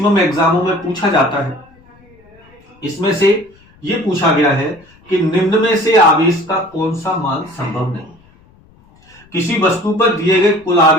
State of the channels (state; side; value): noise; left; rumble, 29 dB below the sound